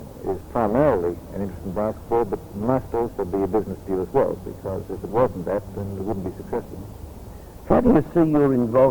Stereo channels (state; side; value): identical; both; correlation 1.00